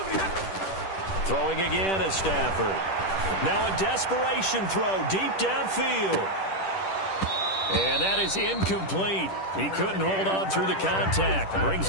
Throwing again is Stafford. Now a desperation throw deep downfield. And that is incomplete. He couldn't hold on through the contact. Brings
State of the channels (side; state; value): right; late; 10 ms